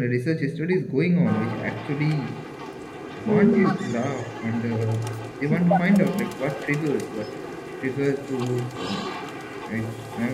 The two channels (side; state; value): both; identical; correlation 1.00